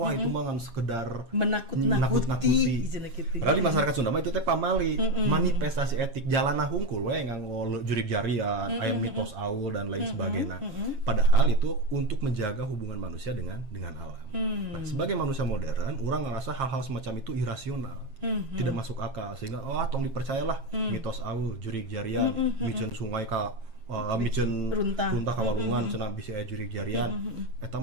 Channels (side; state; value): left; late; 7.4 ms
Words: itu mah ngan sekedar menakut-nakuti. Padahal di masyarakat Sunda mah itu teh pamali, manifestasi etik jalana hungkul we nganggo jurig jarian, aya mitos aul dan lain sebagainya. Padahal itu untuk menjaga hubungan manusia dengan alam. Nah, sebagai manusia modern, orang ngerasa hal-hal semacam itu irasional, tidak masuk akal, sehingga tong dipercayalah mitos aul, jurig jarian, miceun sungai ka miceun runtah kawalungan cenah bisi aya jurig jarian, eta